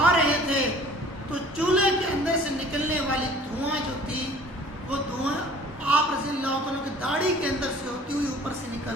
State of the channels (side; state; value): both; normal; correlation 0.49